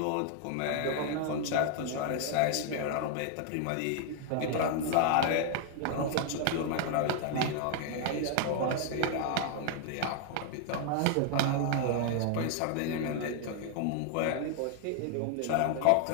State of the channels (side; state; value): both; different; correlation 0.00